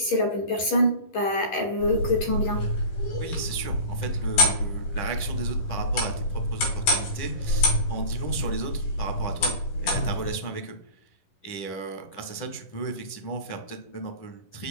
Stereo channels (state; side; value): late; right; 11 ms